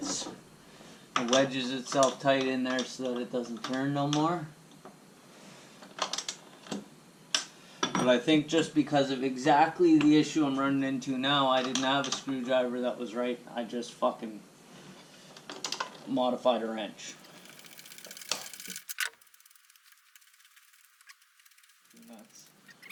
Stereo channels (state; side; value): identical; both; correlation 1.00